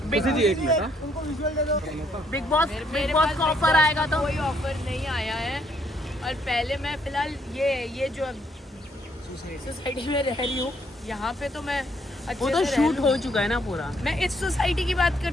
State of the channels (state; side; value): normal; both; correlation 0.70